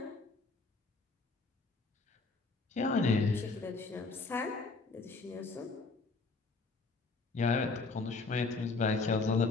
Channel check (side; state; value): right; quieter; 3.8 dB